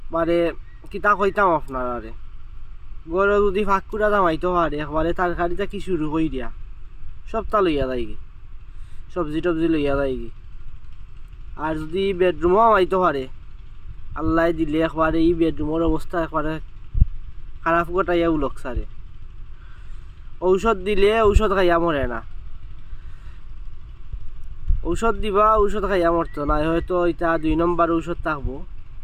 মানে কিতা কইতাম আপনারা গরু যদি ফাঁকুড়া দামাইতে পারে একবারে তরকারিটা কি শুরু কই দিয়া সবটা লইয়া যায় কি সবজি টবজি লইয়া যায় কি আর যদি বেডরুমও আমাইতে পারে আল্লাহ দিলে একবারে এই বেডরুমের অবস্থা একবারে খারাপ গোটাইয়া উলক সারে ঔষধ দিলে ঔষধ খাইয়া মরে না ঔষধ দিবা ঔষধ খাইয়া মরতো না হয়তো এটা 2 নম্বর ঔষধ থাকবো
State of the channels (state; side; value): identical; both; correlation 1.00